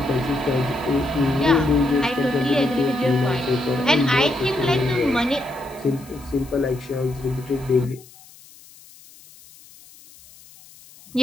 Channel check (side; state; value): left; noise; hiss, 23 dB below the sound